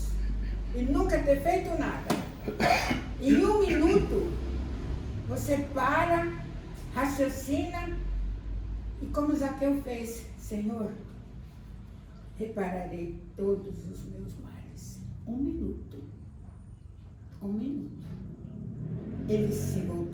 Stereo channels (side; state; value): both; identical; correlation 1.00